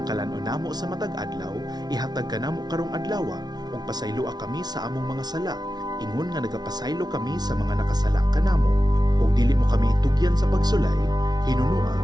kalanon namo sa matag adlaw, ihatag ka namo karong adlawa, ug pasayloa kami sa among mga sala, ingon nga nagapasaylo kami sa mga nakasala kanamo. Ug dili mo kami itugyan sa pagsulay, hinunua,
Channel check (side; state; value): left; late; 0.19 ms